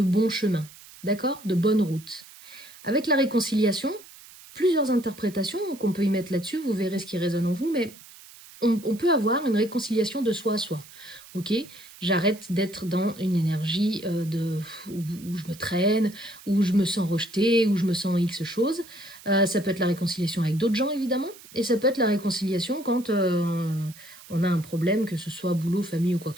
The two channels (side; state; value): right; noise; hiss, 20 dB below the sound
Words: bon chemin, d'accord? De bonne route. Avec la réconciliation, plusieurs interprétations qu'on peut y mettre là-dessus, vous verrez ce qui résonne en vous, mais on peut avoir une réconciliation de soi à soi. Ok, j'arrête d'être dans une énergie où je me traîne, où je me sens rejetée, où je me sens X choses. Ça peut être la réconciliation avec d'autres gens, évidemment, et ça peut être la réconciliation quand on a un problème, que ce soit boulot, famille ou quoi